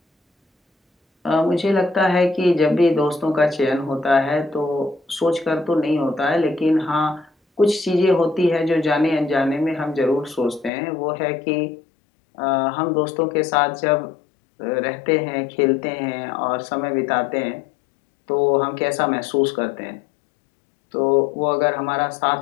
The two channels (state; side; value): drops out; right; at 10.7 s